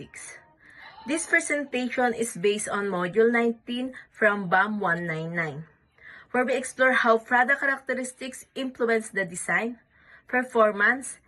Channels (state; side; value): identical; both; correlation 1.00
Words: This presentation is based on Module 19 from BAM 199, where we explore how product characteristics influence the design, performance,